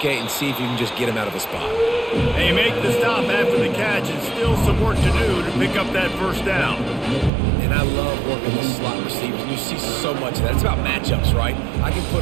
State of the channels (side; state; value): left; drops out; at 7.3 s